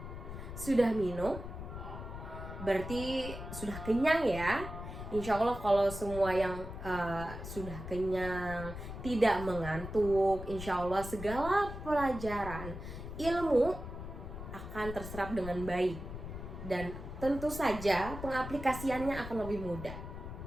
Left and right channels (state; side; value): noise; left; rumble, 9 dB below the sound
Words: Sudah minum? Berarti sudah kenyang ya. Insya Allah kalau semua yang sudah kenyang, tidak mengantuk, insya Allah segala pelajaran ilmu akan terserap dengan baik. Dan tentu saja pengaplikasiannya akan lebih mudah.